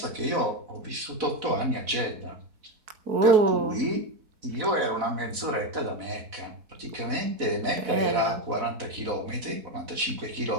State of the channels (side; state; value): left; late; 4.0 ms